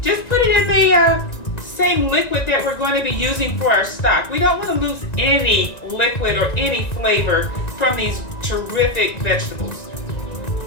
just put it in the same liquid that we're going to be using for our stock. We don't want to lose any liquid or any flavor from these terrific vegetables.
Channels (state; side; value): late; right; 1.9 ms